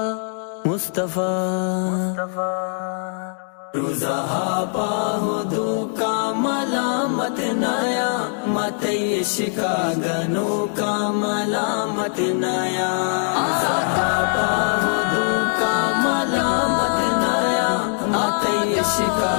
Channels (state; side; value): silent; right; digital silence